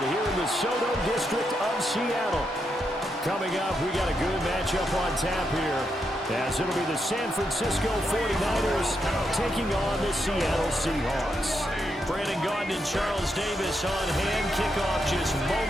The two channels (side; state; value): both; normal; correlation 0.82